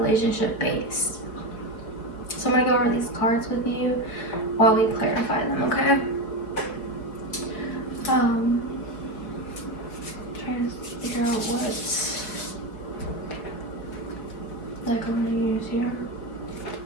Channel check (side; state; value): right; late; 4.6 ms